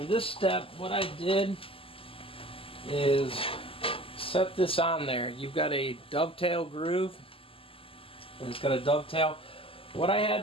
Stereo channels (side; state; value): right; late; 0.26 ms